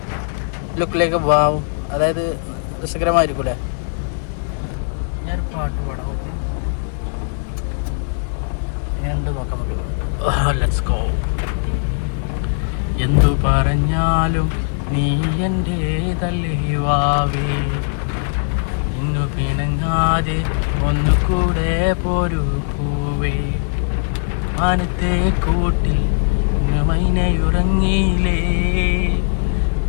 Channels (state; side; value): silent; right; 56 dB below the other